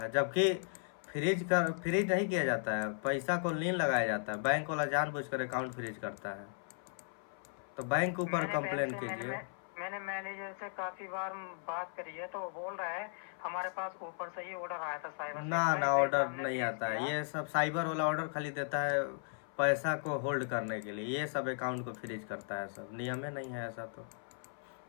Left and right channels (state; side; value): silent; right; 54 dB below the other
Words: जबकि फ्रीज नहीं किया जाता है, पैसा को लीन लगाया जाता है। बैंक वाला जानबूझकर अकाउंट फ्रीज करता है, तो बैंक के ऊपर कंप्लेन कीजिए। मैंने मैनेजर से काफी बार बात करी है तो वो बोल रहा है हमारे पास ऊपर से ही ऑर्डर आया था साइबर से। ना ऑर्डर नहीं आता है, ये सब साइबर वाला ऑर्डर खाली देता है पैसा को होल्ड करने के लिए, ये सब अकाउंट को फ्रीज करता है, सब नियम में नहीं है ऐसा। तो